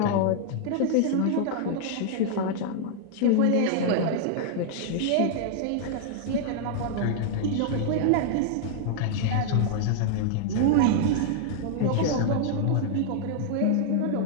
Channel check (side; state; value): both; different; correlation -0.01